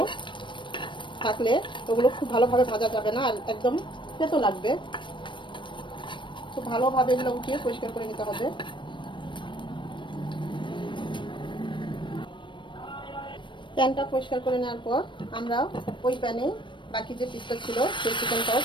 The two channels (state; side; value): late; right; 0.23 ms